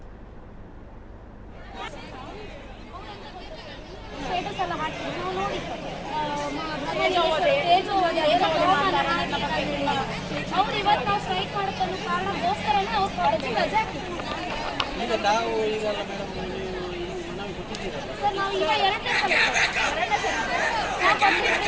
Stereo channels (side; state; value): both; identical; correlation 1.00